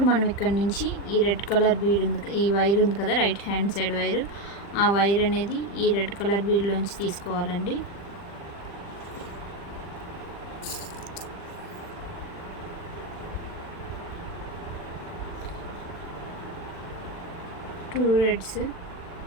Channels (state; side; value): late; right; 40 ms